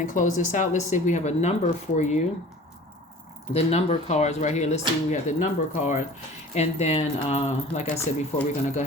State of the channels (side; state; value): both; normal; correlation 0.43